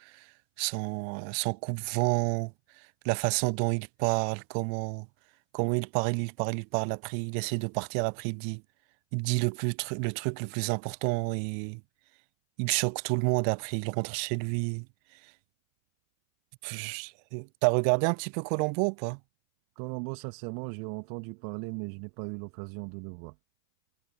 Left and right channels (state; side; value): silent; left; 57 dB below the other